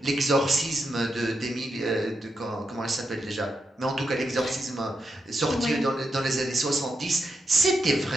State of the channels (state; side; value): normal; both; correlation 0.85